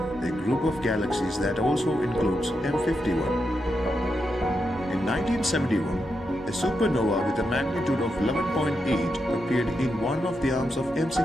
a group of galaxies that also includes M51. In 1971, a supernova with a magnitude of 11.8 appeared in one of the arms of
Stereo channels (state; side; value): normal; both; correlation 0.85